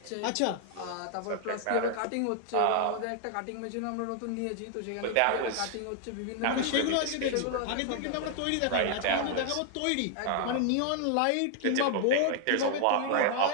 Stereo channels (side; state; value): both; different; correlation 0.00